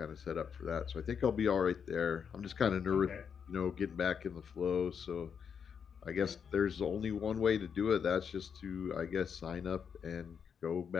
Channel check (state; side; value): quieter; right; 7.0 dB